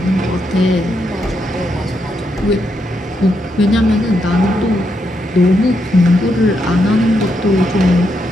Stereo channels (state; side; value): normal; both; correlation 0.80